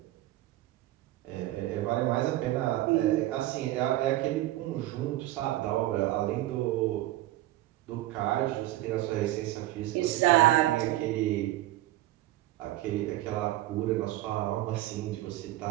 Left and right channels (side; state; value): left; quieter; 15.8 dB